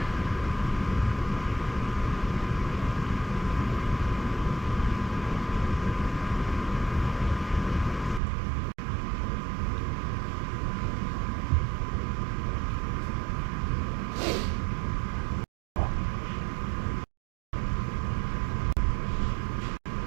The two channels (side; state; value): left; drops out; at 8.2 s